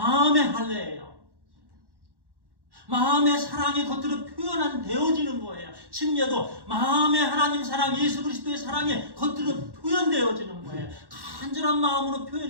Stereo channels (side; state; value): left; late; 1.1 ms